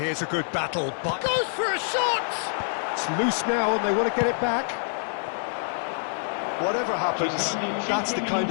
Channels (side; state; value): right; silent; digital silence